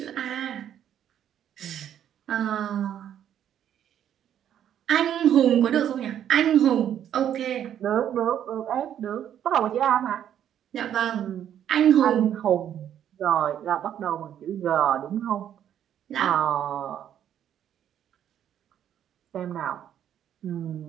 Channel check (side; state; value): left; quieter; 10.1 dB